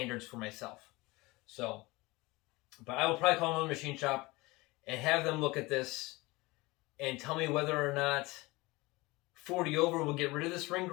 for myself. So, but I will probably call another machine shop and have them look at this and tell me whether or not 40 over will get rid of this ring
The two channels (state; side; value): quieter; right; 22.3 dB